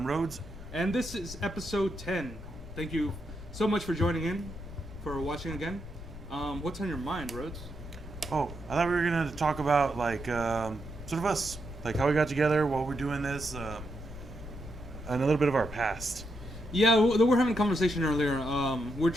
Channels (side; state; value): left; noise; rumble, 12 dB below the sound